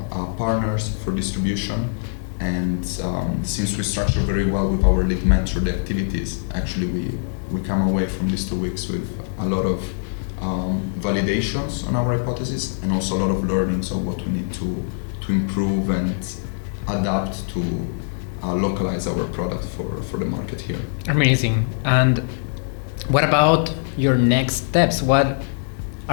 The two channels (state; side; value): silent; right; digital silence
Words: partners for distribution. And since we structure very well with our lead mentor the activities, actually we come away from these 2 weeks with a lot of validations on our hypothesis and also a lot of learnings of what we need to improve and adapt to localize our product for the market here. Amazing. And what about your next steps? What